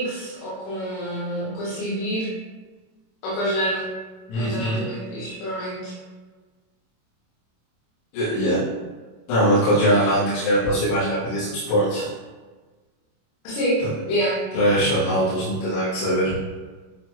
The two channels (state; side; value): late; right; 27 ms